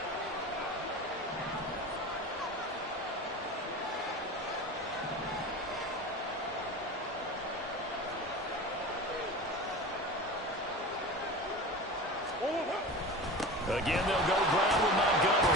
Again, they'll go ground with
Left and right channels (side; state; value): both; normal; correlation 0.32